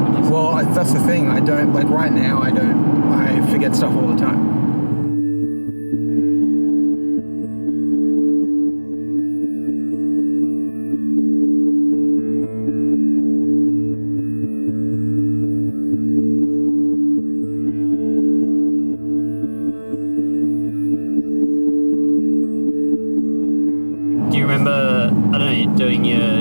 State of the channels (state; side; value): inverted; both; correlation -1.00